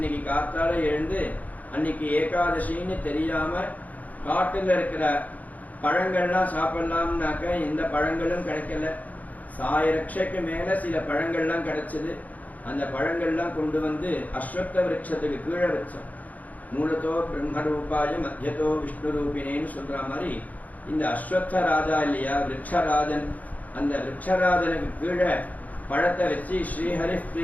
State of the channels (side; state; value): right; late; 0.077 ms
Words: காத்தால எழுந்து அன்னைக்கு ஏகாதசின்னு தெரியாம காட்டுல இருக்கிற பழங்கள்லாம் சாப்பிடலாம்னாக்க எந்த பழங்களும் கிடைக்கல. 1000 ரட்சைக்கு மேல சில பழங்கள்லாம் கிடைச்சது. அந்த பழங்கள்லாம் கொண்டு வந்து அஸ்வத்த விருட்சத்துக்கு கீழே வச்சோம். மூலத்தோ பிரம்மரூபாய மத்தியத்தோ விஷ்ணு ரூபினேன்னு சொல்ற மாதிரி இந்த அஸ்வத்த ராஜா இல்லையா விருட்சராஜன், அந்த விருட்சராஜனுக்கு கீழே பழத்தை வச்சு ஸ்ரீஹரி